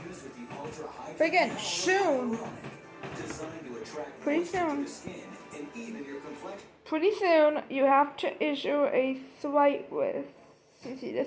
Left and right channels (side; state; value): both; identical; correlation 1.00